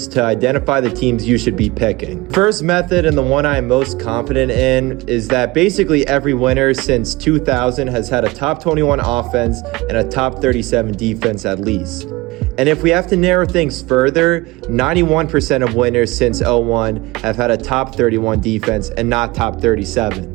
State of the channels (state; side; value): quieter; left; 21.8 dB